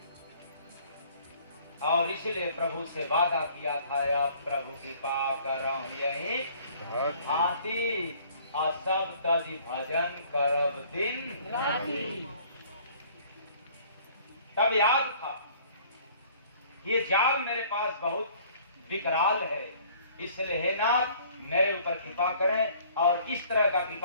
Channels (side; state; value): both; inverted; correlation -0.55